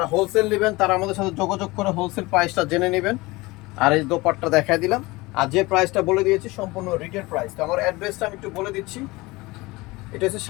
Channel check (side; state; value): right; quieter; 22.2 dB